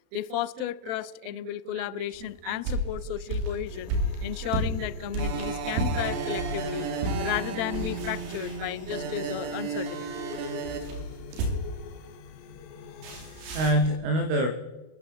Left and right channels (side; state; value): left; late; 32 ms